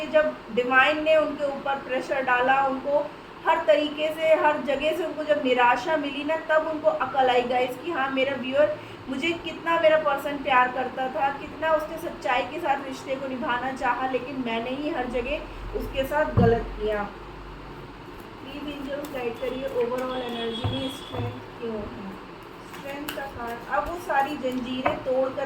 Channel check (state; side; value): identical; both; correlation 1.00